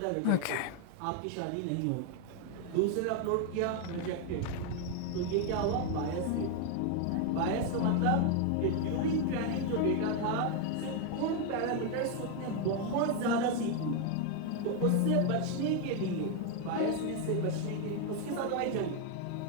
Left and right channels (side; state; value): both; different; correlation 0.01